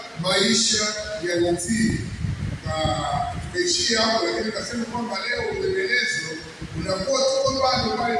maisha ya utii. Tukaishia hapo, lakini kasema kwamba leo uendelezo unakuwa tuko bado pale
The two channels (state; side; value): identical; both; correlation 1.00